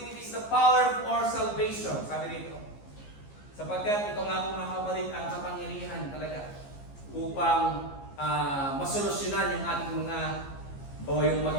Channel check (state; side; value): late; right; 15 ms